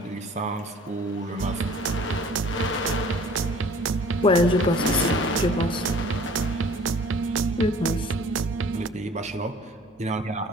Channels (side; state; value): both; normal; correlation 0.50